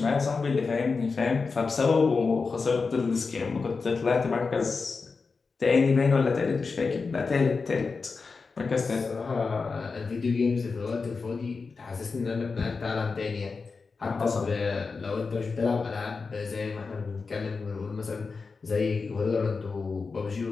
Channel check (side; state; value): right; quieter; 4.6 dB